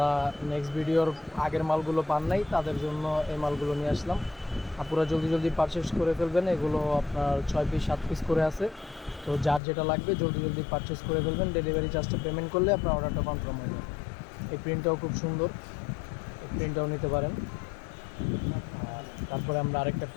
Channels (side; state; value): right; drops out; at 9.6 s